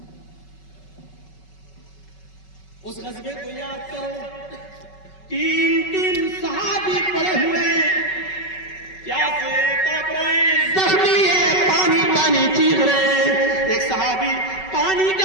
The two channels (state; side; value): late; right; 5.3 ms